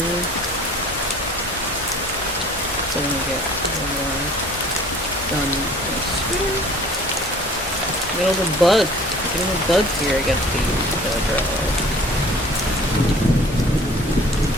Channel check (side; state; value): both; normal; correlation 0.50